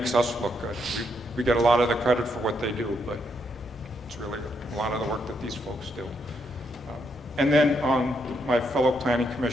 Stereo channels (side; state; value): both; normal; correlation 0.77